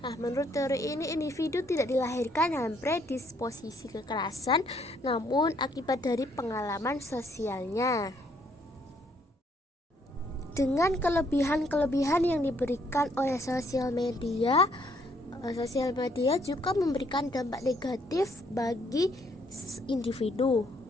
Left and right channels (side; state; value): both; normal; correlation 0.68